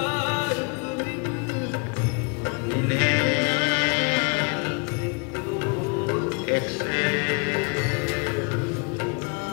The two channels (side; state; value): right; quieter; 32.7 dB